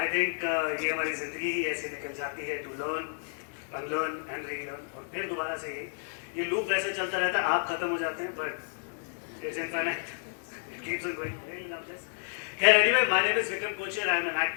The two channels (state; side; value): silent; right; digital silence